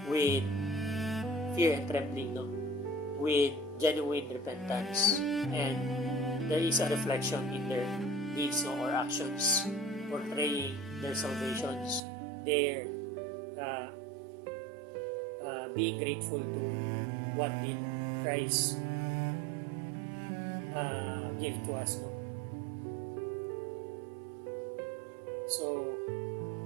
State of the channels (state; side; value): drops out; left; at 12.0 s